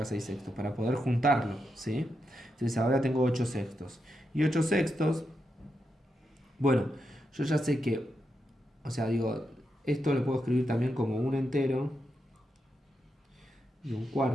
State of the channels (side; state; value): both; normal; correlation 0.85